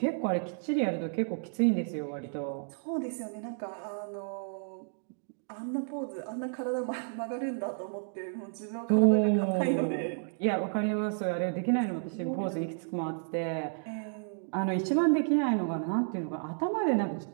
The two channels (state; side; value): silent; left; digital silence